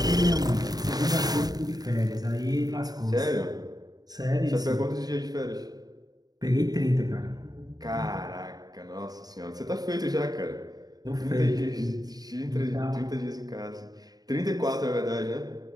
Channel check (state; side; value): late; left; 0.19 ms